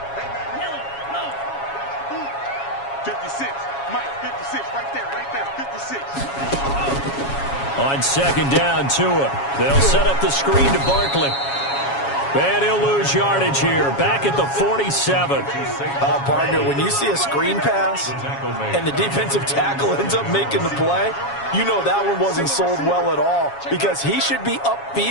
On 2nd down, Tua. They'll set up the screen to Barkley. And he'll lose yardage here, back at the 47. Partner, when you see a screen pass and the defensive tackle ends up making the play, you know that one wasn't sold well at all, because he should be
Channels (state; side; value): late; right; 7.2 ms